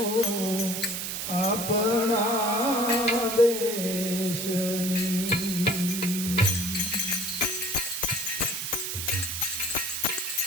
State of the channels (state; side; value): noise; right; hiss, 4 dB below the sound